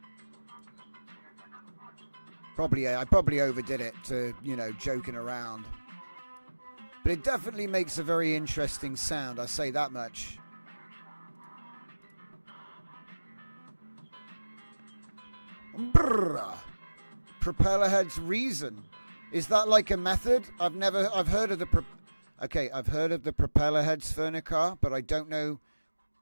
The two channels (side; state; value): both; inverted; correlation -1.00